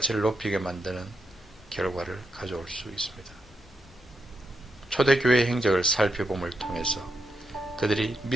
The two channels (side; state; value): both; normal; correlation 0.83